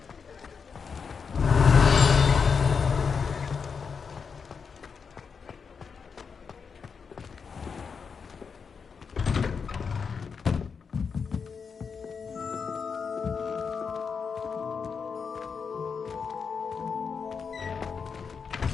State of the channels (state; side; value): quieter; right; 5.8 dB